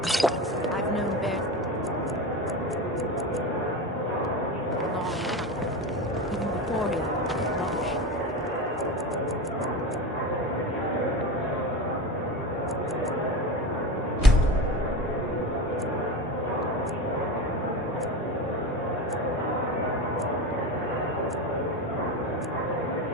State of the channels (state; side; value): normal; both; correlation 0.25